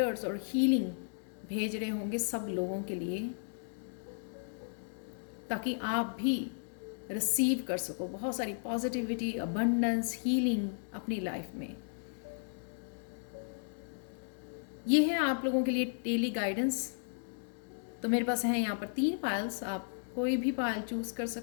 और हीलिंग भेज रहे होंगे सब लोगों के लिए, ताकि आप भी रिसीव कर सको बहुत सारी पॉजिटिविटी, अबंडेंस, हीलिंग अपनी लाइफ में। ये है आप लोगों के लिए डेली गाइडेंस। तो मेरे पास है यहाँ पर 3 पायल्स, आप कोई भी पायल चूज़ कर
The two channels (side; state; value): right; silent; digital silence